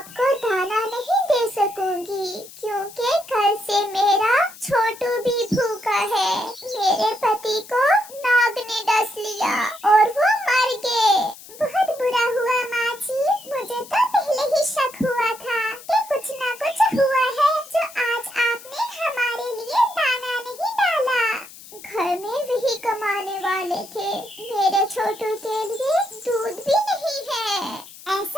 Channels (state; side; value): noise; left; hiss, 18 dB below the sound